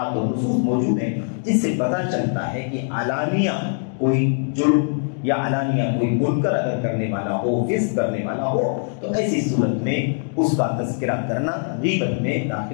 اور نصوص موجود ہیں جس سے پتہ چلتا ہے کہ علانیہ کوئی جرم یا علانیہ کوئی منکر اگر کرنے والا ہو، فسق کرنے والا ہو، تو ایسی صورت میں اس کا تذکرہ کرنا غیبت میں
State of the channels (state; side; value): silent; right; 60 dB below the other